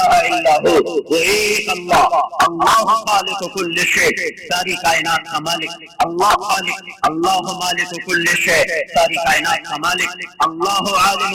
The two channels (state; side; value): identical; both; correlation 1.00